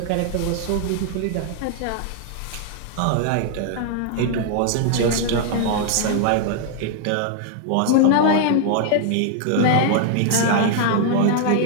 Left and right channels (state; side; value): different; both; correlation -0.01